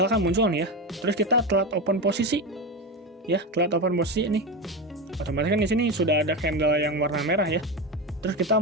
muncul nih ya, terus kita telat open posisi. Ya, telat open posisi nih. Otomatis kan di sini sudah ada candle yang warna merah ya. Terus kita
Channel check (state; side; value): normal; both; correlation 0.18